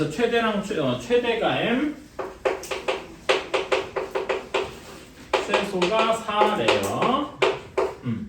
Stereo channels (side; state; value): both; identical; correlation 1.00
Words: 최대랑 최대가 M 최소가 4래요.